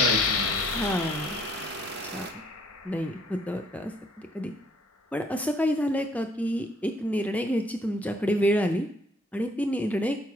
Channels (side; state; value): both; normal; correlation 0.62